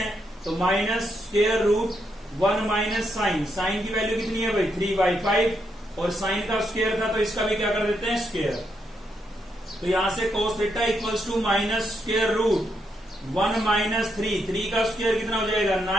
तो minus square root 1 minus sine, sine की वैल्यू कितनी है भाई, 3/5 और साइन का स्क्वायर था तो इसका भी क्या कर देते हैं, स्क्वायर। तो यहां से cos theta equals to minus square root 1 minus 3 का स्क्वायर कितना हो जाएगा,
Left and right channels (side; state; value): both; normal; correlation 0.79